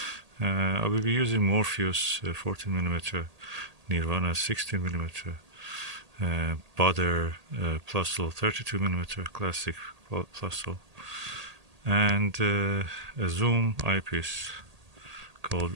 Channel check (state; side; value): late; left; 1.8 ms